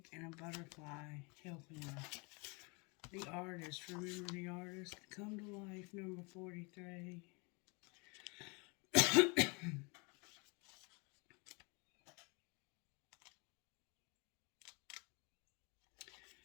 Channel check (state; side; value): quieter; right; 30.5 dB